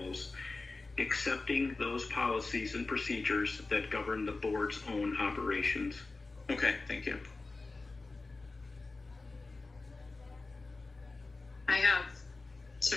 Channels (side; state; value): right; quieter; 3.5 dB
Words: accepting those policies and procedures that govern the board's own operations. Okay, thank you. I have